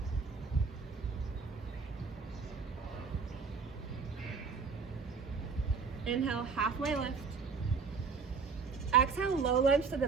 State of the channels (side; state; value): left; quieter; 5.2 dB